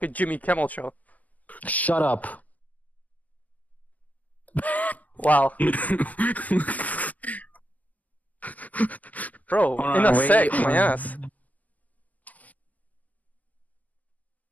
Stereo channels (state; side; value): late; right; 0.079 ms